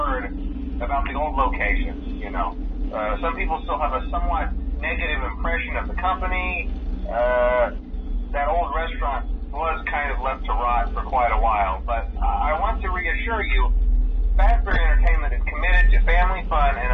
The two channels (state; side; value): identical; both; correlation 1.00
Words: about the old location. Some people still have a somewhat negative impression of the company. That old restaurant was kind of left to rot for quite a while, but I want to reassure you, Fazbear Entertainment is committed to family fun